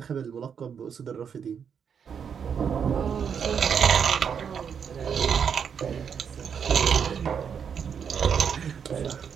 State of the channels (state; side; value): quieter; left; 7.2 dB